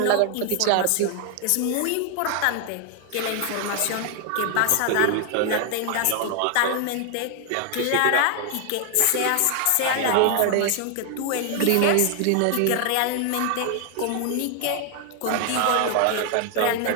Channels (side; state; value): both; different; correlation 0.00